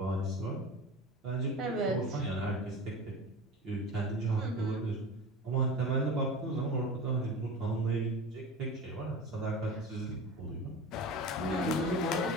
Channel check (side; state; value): both; normal; correlation 0.32